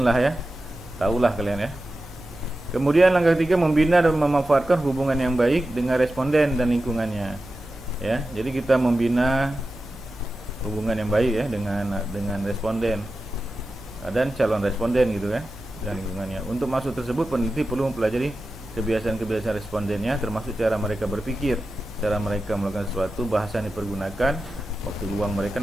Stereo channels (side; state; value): both; normal; correlation 0.93